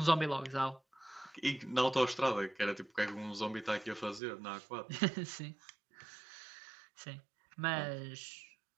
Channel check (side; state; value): left; drops out; at 4.2 s